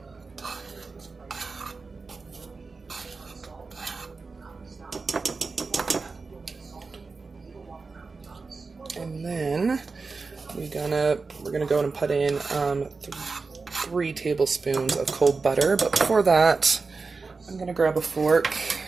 And then we're gonna go and put in 3 tablespoons of cold butter. But before that, I'm gonna grab a fork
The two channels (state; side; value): quieter; left; 4.3 dB